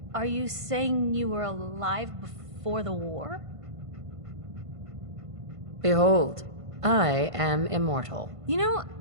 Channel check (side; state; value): left; late; 1.5 ms